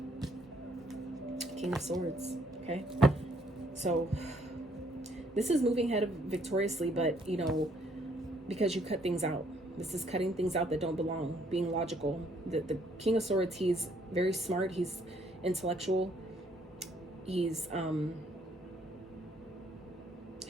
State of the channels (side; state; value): both; normal; correlation 0.67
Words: King of Swords. Okay, so this is moving ahead victoriously, but, you know, because you cut things out. This is cutting things out that don't belong, being logical. The King of Swords, he's very smart, he's intellectual, he's